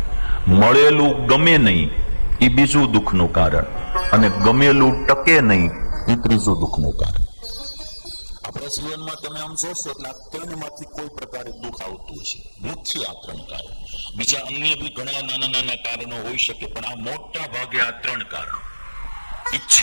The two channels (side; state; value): both; inverted; correlation -1.00